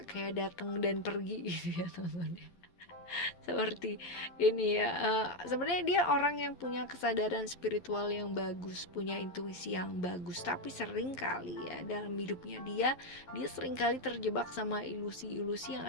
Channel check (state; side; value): late; right; 11 ms